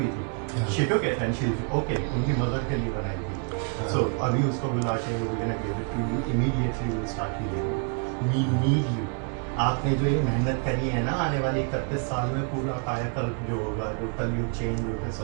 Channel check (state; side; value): quieter; left; 38.2 dB